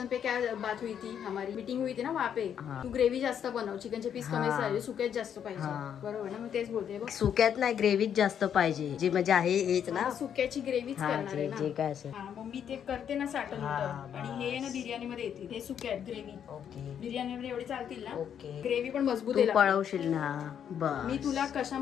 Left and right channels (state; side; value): quieter; right; 8.7 dB